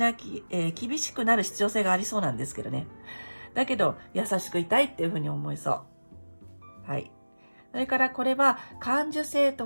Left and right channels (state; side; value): inverted; both; correlation -1.00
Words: なる必要性がありそうなんですけどね。だけど、優しくいたいっていうふうに思いそう。はい。それからこれは、感受性